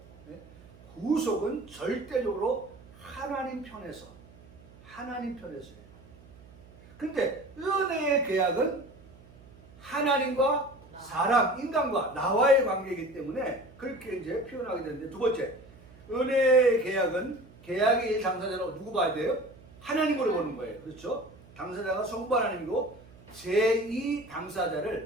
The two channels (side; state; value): right; noise; hum, 23 dB below the sound